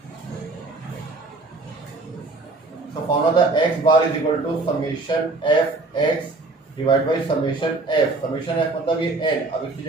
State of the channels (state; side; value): quieter; left; 3.2 dB